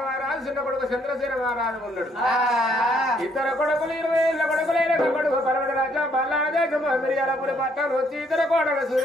మహారాజు చిన్న కొడుకు చంద్రశేఖర మహారాజు ఉన్నాడు ఇద్దరు కొడుకులు 20 ఏళ్ళ కొడుకులైన కొడుకు పర్వత రాజ్యం బల్లాదేశం మిరియాలపురి పట్టణం వచ్చి ఇద్దరు కోడలు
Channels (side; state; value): both; normal; correlation 0.68